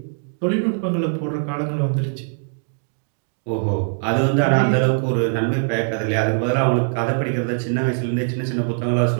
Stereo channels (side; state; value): left; silent; 64 dB below the other